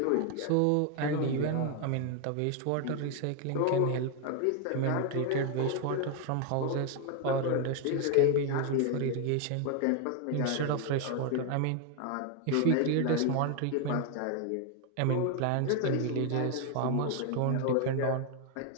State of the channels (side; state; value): both; different; correlation 0.01